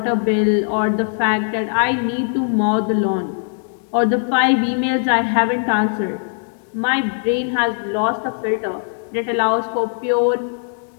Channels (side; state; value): right; silent; 66 dB below the other